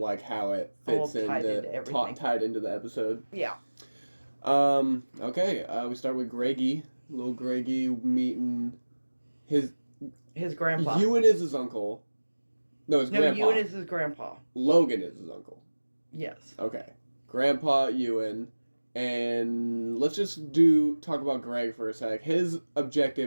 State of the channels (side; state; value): both; inverted; correlation -1.00